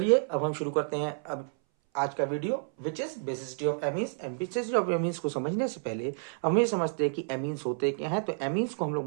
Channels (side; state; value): left; silent; 58 dB below the other